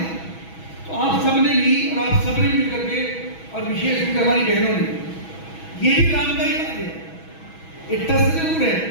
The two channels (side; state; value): right; late; 6.2 ms